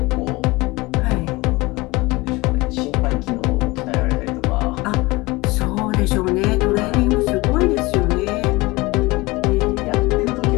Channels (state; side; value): quieter; right; 22.7 dB